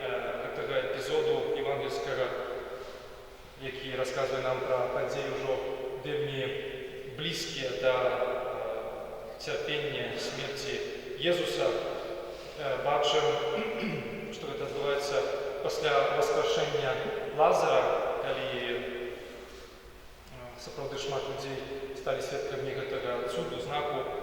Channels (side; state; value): both; identical; correlation 1.00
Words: цього епізоду євангельського, який розказує нам про події вже вельми близькі до терпіння смерті Єзуса, бачимо, що це відбувається після воскрешення Лазара, коли справді шмат людей стали свідками цього чуду, знаку.